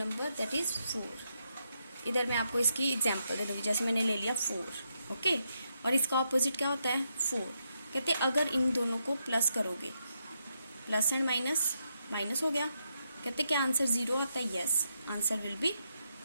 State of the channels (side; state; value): both; inverted; correlation -0.81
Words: दैट इज 4. इधर मैं आपको इसकी एग्जांपल दे दूँगी. जैसे मैंने ले लिया 4, ओके, और इसका ऑपोजिट क्या होता है 4. कहते अगर इन दोनों को प्लस करोगे, प्लस एंड माइनस हो गया. कहते क्या आंसर 0 आता है, yes answer will be